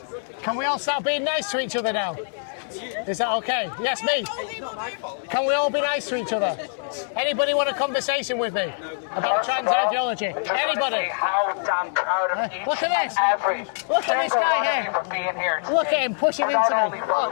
Can we all start being nice to each other now? Is that okay? Yes, me. Can we all be nice to each other? Anybody want a conversation with me? about trans ideology? Anybody? How damn proud of each Look at this. every Look at this guy here. for being here. Look at him pushing into Not me. only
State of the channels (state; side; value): silent; right; 62 dB below the other